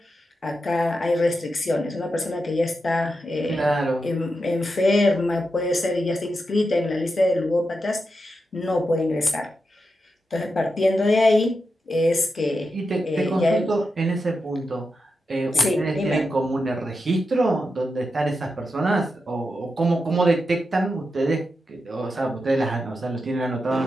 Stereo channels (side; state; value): both; normal; correlation 0.88